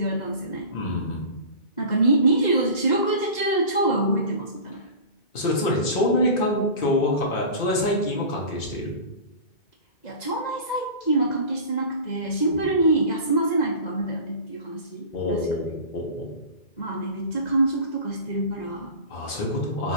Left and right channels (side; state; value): right; late; 2.6 ms